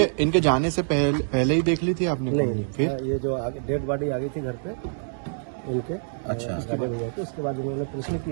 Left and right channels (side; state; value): left; silent; digital silence